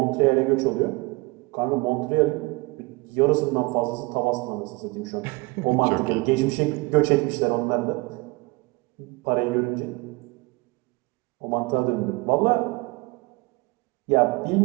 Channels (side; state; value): left; quieter; 25.0 dB